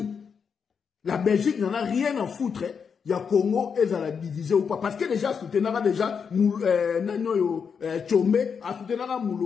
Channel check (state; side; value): quieter; right; 6.4 dB